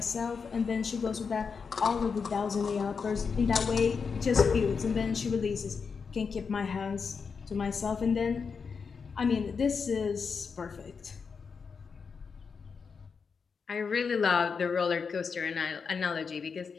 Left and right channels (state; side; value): quieter; right; 5.6 dB